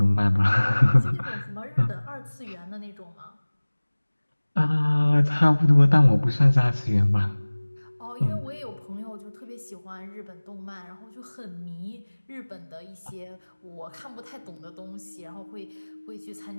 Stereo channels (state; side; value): inverted; both; correlation -1.00